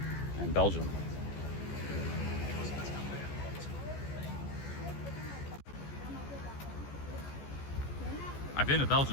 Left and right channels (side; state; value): right; late; 14 ms